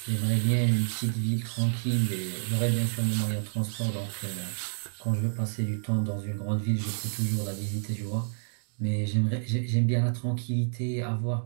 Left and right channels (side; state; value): left; silent; digital silence